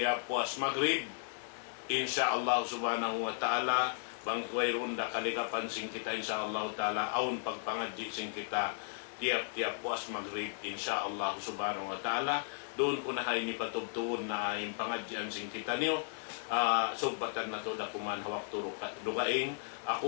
puas maghrib insyaallah subhanahu wa ta'ala bang wayron da kaligapan sing kita insyaallah ta'ala aun pagpangadji sing kita tiap-tiap puas maghrib insyaallah subhanahu wa ta'ala. Doon ko na hay ni patubtuon na yung pangadyan sing kita niyo. Subbatan na to dakuman hawak turo dugaing.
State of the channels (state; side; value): silent; right; digital silence